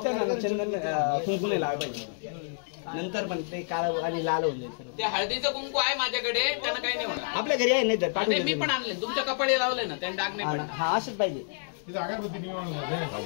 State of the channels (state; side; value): silent; right; digital silence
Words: ना चंदन कुंकू नाही लावायला पाहिजे नंतर पण ते काळं आणि लाल होऊन जाईल ते हळदीचं कुंकू आहे माझ्याकडे, त्यानं काही नाही होणार. आपल्या घरी आहे नाही तर आणि मी पण आणले. तुमच्या कपाळी लावले ना, त्याने डाग नाही पडणार. हा असंच पाहिजे இது अगरबत्ती निवडून